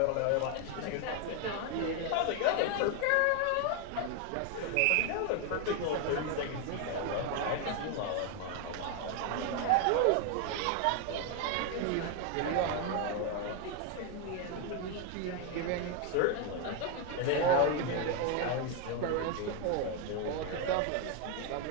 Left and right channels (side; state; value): both; different; correlation 0.01